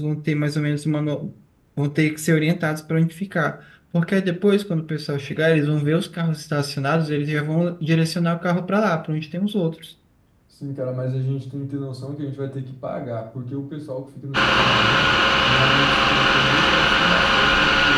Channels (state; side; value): identical; both; correlation 1.00